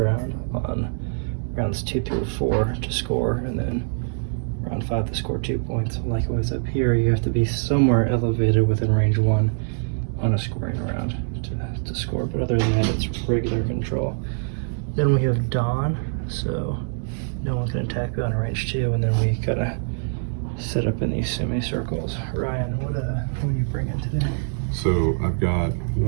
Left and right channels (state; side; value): silent; left; digital silence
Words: on rounds 2 through 4 to score, and then round 5 to score 2 points. Likewise up here, you have to be somewhere elevated within range 1 on a scoring round to score, but other than that, it's regular control. Then we have Dawn, so no one can attack beyond range 2, and then we kind of set up in these semicircles. Ryan, what are you bringing today? So I've got